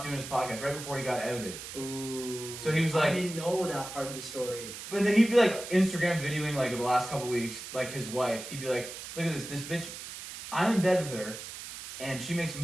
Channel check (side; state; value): right; noise; hiss, 10 dB below the sound